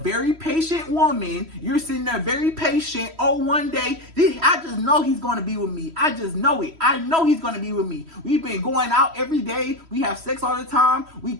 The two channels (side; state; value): left; late; 3.1 ms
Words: patient woman. You're sitting there very patient. Oh, one day, I just know he's going to be with me. I just know it. I know he's going to be with me. We've been going out every day. We have sex all the time. We